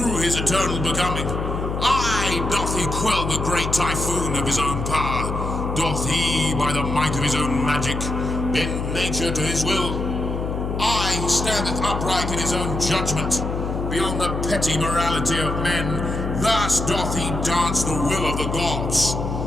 his eternal becoming? Aye. Doth he quell the great typhoon of his own power? Doth he, by the might of his own magic, bend nature to his will? Aye, he standeth upright in his own judgment, beyond the petty morality of men. Thus doth he dance the will of the gods,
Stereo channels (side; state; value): left; noise; hum, 3 dB below the sound